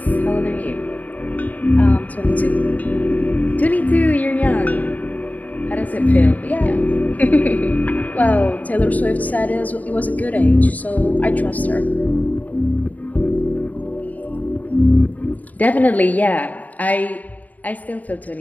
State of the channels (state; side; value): late; right; 0.075 ms